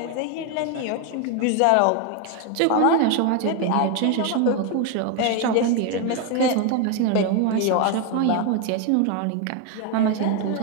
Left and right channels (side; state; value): both; different; correlation 0.01